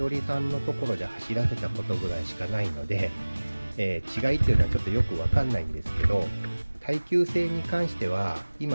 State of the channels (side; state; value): both; inverted; correlation -1.00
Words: りさんのところで走らせたことぐらいしかないので、違いっていうのはちょっとよくわかんないんですけど、耐久性に関しては